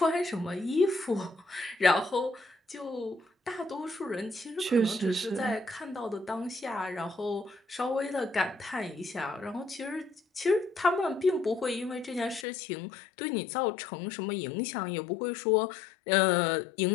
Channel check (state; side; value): drops out; right; at 12.5 s